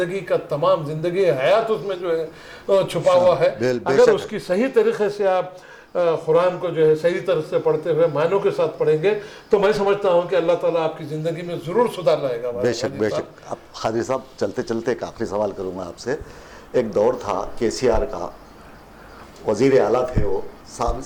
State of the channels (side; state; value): both; identical; correlation 1.00